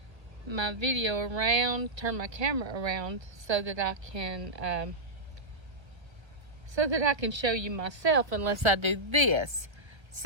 video around, turn my camera around so that I can show you myself unless I do this.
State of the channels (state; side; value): late; left; 1.4 ms